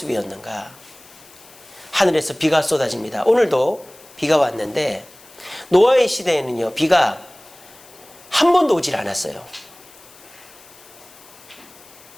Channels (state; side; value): noise; left; hiss, 23 dB below the sound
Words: 하늘에서 비가 쏟아집니다. 오늘도 비가 왔는데 노아의 시대에는요, 비가 한 번도 오질 않았어요.